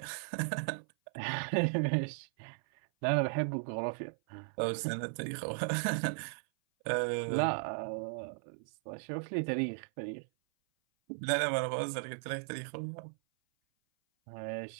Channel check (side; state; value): left; silent; 54 dB below the other